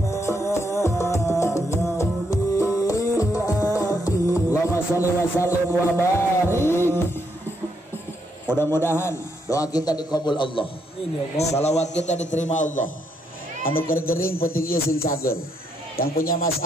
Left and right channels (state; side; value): normal; both; correlation 0.76